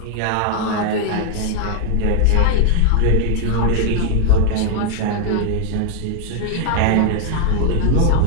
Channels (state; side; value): different; both; correlation 0.00